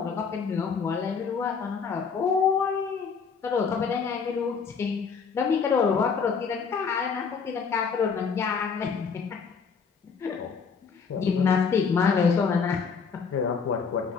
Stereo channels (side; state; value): right; quieter; 5.7 dB